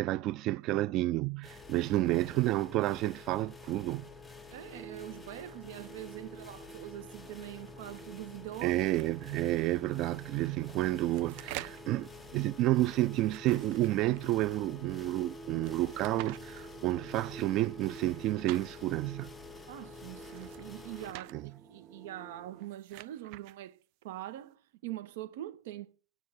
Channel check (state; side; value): quieter; left; 14.2 dB